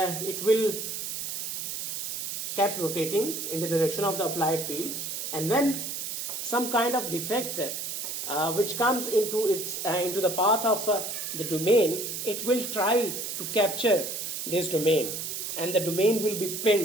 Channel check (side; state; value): right; noise; hiss, 4 dB below the sound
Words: it will keep rotating in the direction of the applied field, and when some kind of defect which comes into the path of the domain, it will try to capture this domain, and the domain will be